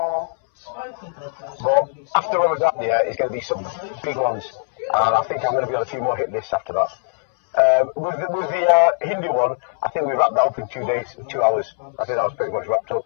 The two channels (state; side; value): silent; right; 65 dB below the other